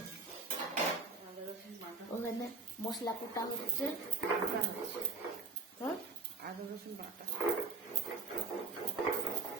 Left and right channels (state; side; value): quieter; left; 4.0 dB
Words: ওখানে মশলা কোটা হচ্ছে। হ্যাঁ, আদা রসুন বাটা।